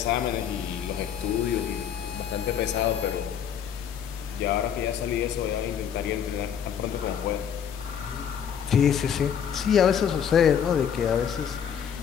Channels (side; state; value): right; quieter; 8.3 dB